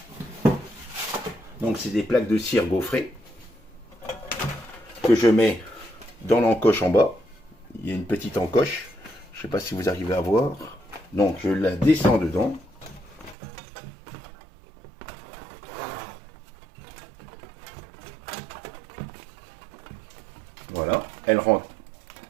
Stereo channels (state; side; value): drops out; left; at 13.4 s